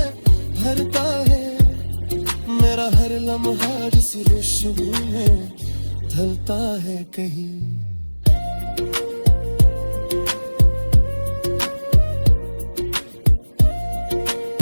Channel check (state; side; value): inverted; both; correlation -1.00